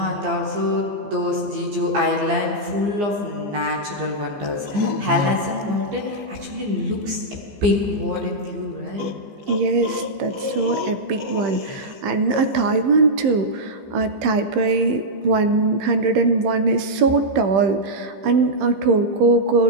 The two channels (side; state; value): left; late; 15 ms